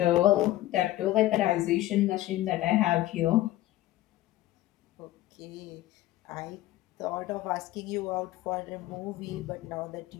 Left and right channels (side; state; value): right; quieter; 15.6 dB